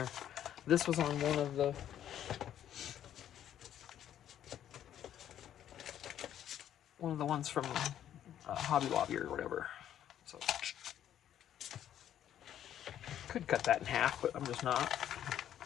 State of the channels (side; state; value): right; quieter; 10.7 dB